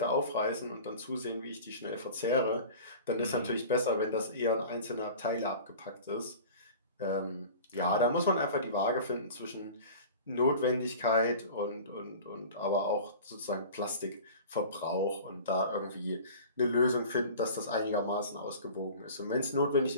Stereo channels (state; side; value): inverted; both; correlation -0.39